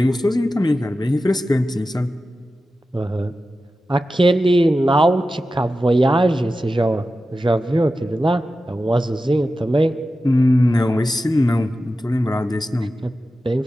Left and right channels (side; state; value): both; normal; correlation 0.93